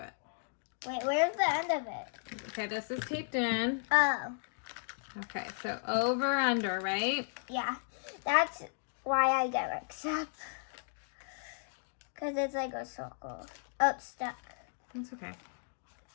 Wait, where's the end of it? Okay, this is taped in. Oh, Okay, so over, under, right? yeah. That's why I get mixed up. Because it's like a circle. Oh, it's stuck. That's okay.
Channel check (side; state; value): right; silent; digital silence